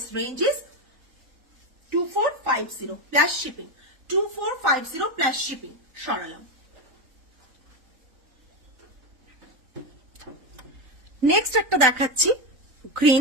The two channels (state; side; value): late; left; 3.9 ms